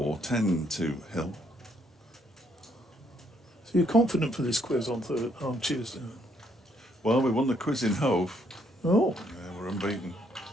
10 to Hill. So you're confident for this quiz on Tuesday? Well, we won the quiz in Hove. Oh. Yeah, we're unbeaten.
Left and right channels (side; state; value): both; normal; correlation 0.71